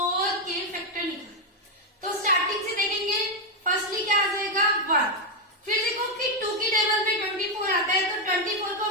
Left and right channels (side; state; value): both; normal; correlation 0.03